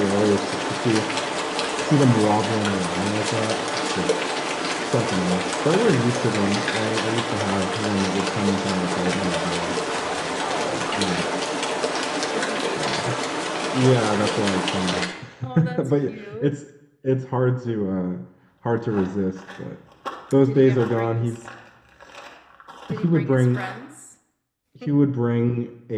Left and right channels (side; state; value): both; identical; correlation 1.00